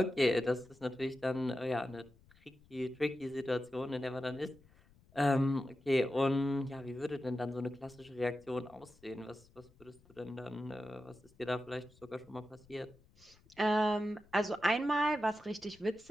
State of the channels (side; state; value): left; noise; rumble, 27 dB below the sound